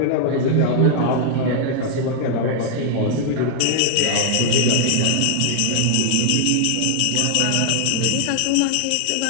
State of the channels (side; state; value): both; different; correlation -0.01